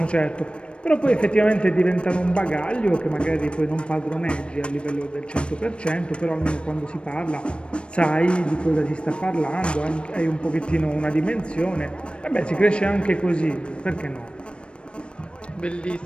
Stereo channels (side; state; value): right; late; 0.057 ms